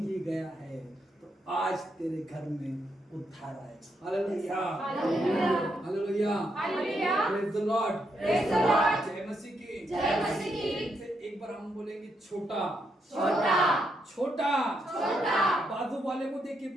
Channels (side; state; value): both; normal; correlation 0.79